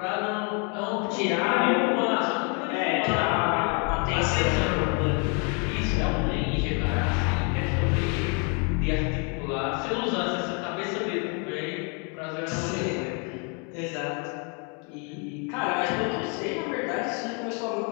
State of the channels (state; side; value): quieter; right; 36.4 dB